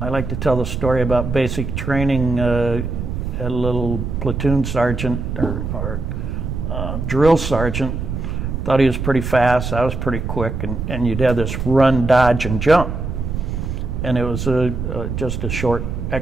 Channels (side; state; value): right; noise; rumble, 4 dB below the sound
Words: like to tell the story about basic training. A little platoon sergeant or drill sergeant thought he was pretty fast. I was pretty quick, and you'd have this run, dodge, and jump. And it was just a short